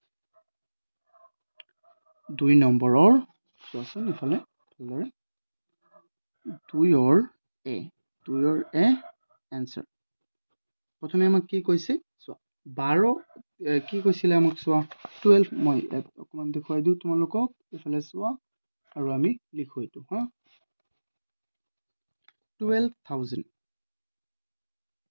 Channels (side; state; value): both; inverted; correlation -1.00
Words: 2 নম্বৰৰ, চোৱাচোন ইফালে ভালদৰে, 2ৰ এ এনচাৰ। প্ৰথমে আমাক কি কৈছে, চোৱা, 12 কি কৈছিলে আমাক, চোৱা 12, মই ইয়াত অকণমান দেখুৱাই দিওঁ তোমালোকক, এইফালে চোৱা আৰু আমি লিখো এইটো। 12,000।